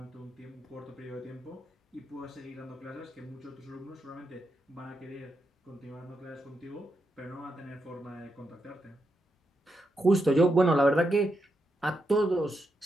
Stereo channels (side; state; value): both; normal; correlation 0.84